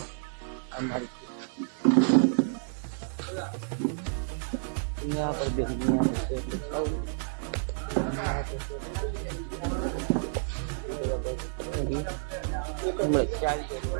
અમારી यहाँ पर भी यहाँ पे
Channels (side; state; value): left; silent; digital silence